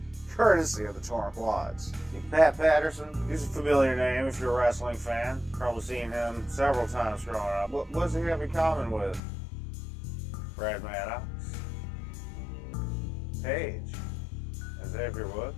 Courtesy of the torn quads. Pat Patterson, he's a familiar name if you're a wrestling fan. Probably seen him several times growing up. What does he have in common with Brad Maddox, Paige, and Xavier Woods?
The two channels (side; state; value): right; drops out; at 9.2 s